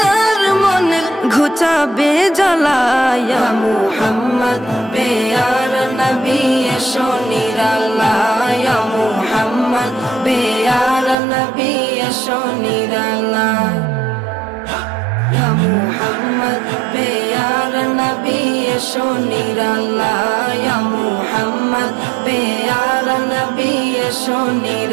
মনের ঘুচাবে জ্বালা, ইয়া মুহাম্মদ প্যারা নবী এসো নিরাল্লাহ, ইয়া মুহাম্মদ প্যারা নবী এসো নিরাল্লাহ, ইয়া মুহাম্মদ প্যারা নবী এসো নিরাল্লাহ, ইয়া মুহাম্মদ প্যারা নবী এসো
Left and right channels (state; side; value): drops out; left; at 11.2 s